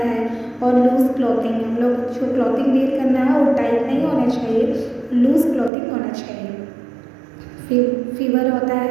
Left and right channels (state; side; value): drops out; left; at 5.7 s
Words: है। और लूज क्लॉथिंग, हम लोग जो क्लॉथिंग वेयर करना है वो टाइट नहीं होना चाहिए, लूज क्लॉथिंग होना चाहिए। फीवर होता